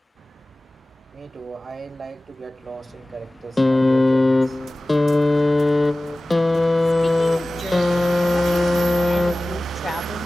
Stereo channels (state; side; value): normal; both; correlation 0.97